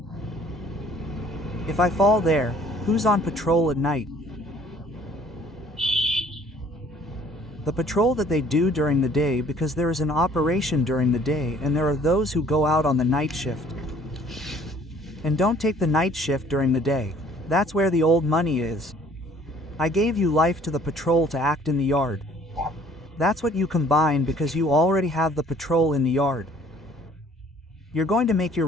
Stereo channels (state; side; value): normal; both; correlation 0.56